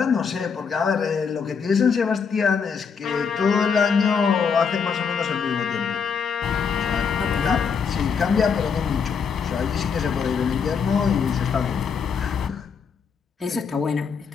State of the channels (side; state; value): right; quieter; 6.2 dB